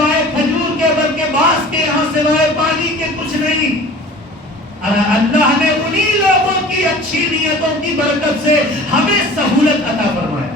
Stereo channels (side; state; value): both; normal; correlation 0.43